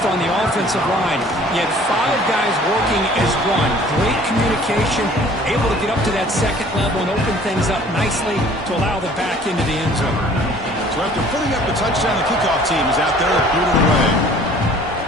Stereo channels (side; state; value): both; normal; correlation 0.52